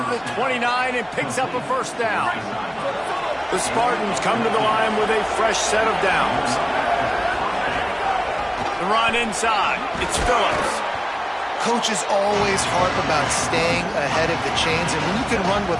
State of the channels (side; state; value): both; identical; correlation 1.00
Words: the 29 and picks up a first down. The Spartans come to the line with a fresh set of downs. The run inside. It's Phillips. Coaches always harp about staying ahead of the chains, and when you can run with